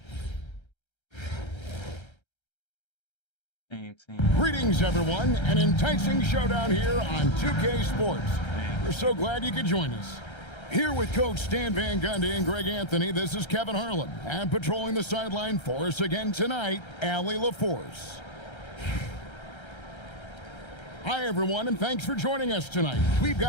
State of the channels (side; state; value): right; late; 1.3 ms